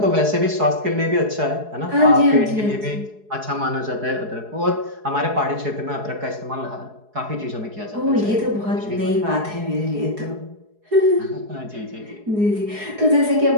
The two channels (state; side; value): late; left; 4.7 ms